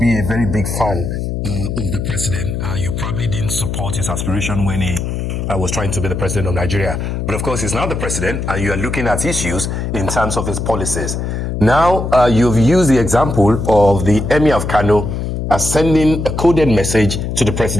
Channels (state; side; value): noise; left; hum, 3 dB below the sound